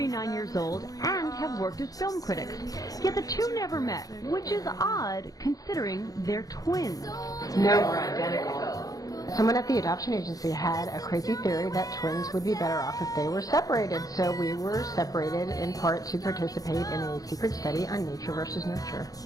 years old, and have worked as film critics. Yet the two never met, which is odd considering they're twins. Someone at the adoption agency had a crazy theory that twins would be better off if they were separated. So we were separated in part to participate in a secret study on nature versus nurture.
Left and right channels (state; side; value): late; right; 0.17 ms